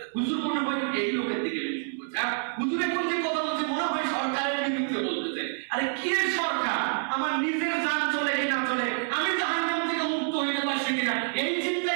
হুজুর মনে হয় এই লোকের দিকে মেনশন করছে, আর হুজুরে কোন যে কথা বলছে মনে হয় সরকারের বিরুদ্ধে বলতেছে। আরে কি সরকার? আমার নিজের জান চলে কি না চলে, আমি জাহান্নাম থেকে মুক্ত হইতে পারছি কিনা, এই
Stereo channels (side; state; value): left; silent; 60 dB below the other